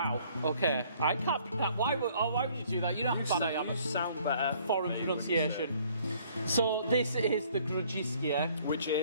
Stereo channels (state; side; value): inverted; both; correlation -0.60